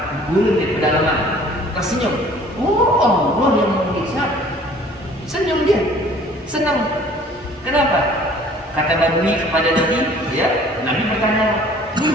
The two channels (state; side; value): normal; both; correlation 0.52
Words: gurun di pedalaman, tersenyum. Oh, Allah yang menghisap. Senyum dia, senang. Kenapa? Kata badui kepada Nabi, ya, Nabi bertanya,